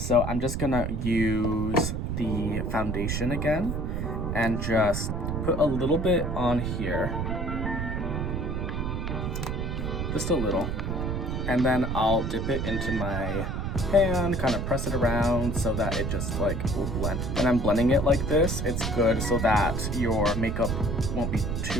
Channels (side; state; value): right; noise; rumble, 2 dB below the sound